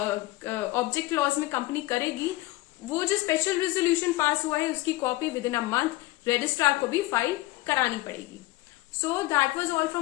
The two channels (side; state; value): right; quieter; 18.8 dB